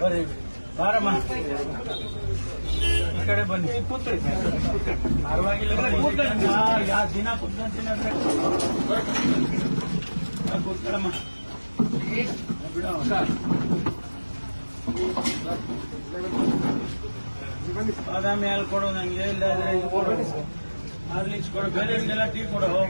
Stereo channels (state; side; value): inverted; both; correlation -1.00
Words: ಬರೀ ಬಾರಮ್ಮ ಈ ಕಡೆ ಬನ್ನಿ. ಪರವಾಗಿಲ್ಲ, ಯಾವ ದಿನ ಕೂತ್ಕೊಂತೀನಿ ಅಂದ್ರೆ ಕೂತ್ಕೊಳ್ಳಮ್ಮ. ಬಿಡ ಬಾದಾಮಿ ಹಾಲು ಕೊಡು ನಂಗೆ, ಇಲ್ಲಾದ್ರೆ ಇದು ಕೊಡು, ಹಾರ್ಲಿಕ್ಸ್ ಕೊಡು, ಬೇರೆಯವರಿಗೆಲ್ಲ ಟೀ ಕೊಡು.